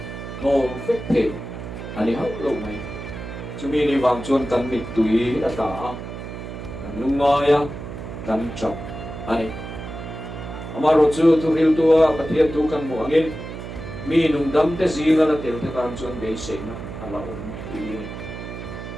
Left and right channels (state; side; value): noise; right; hum, 9 dB below the sound